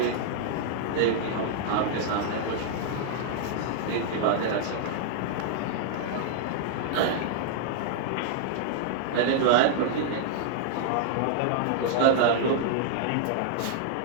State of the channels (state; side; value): different; both; correlation -0.01